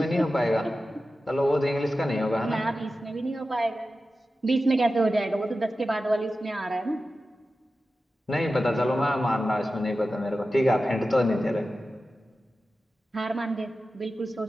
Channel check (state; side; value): normal; both; correlation 0.93